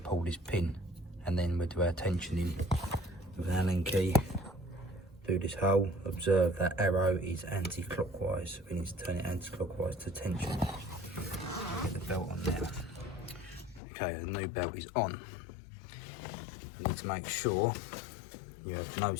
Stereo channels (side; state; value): right; drops out; at 13.8 s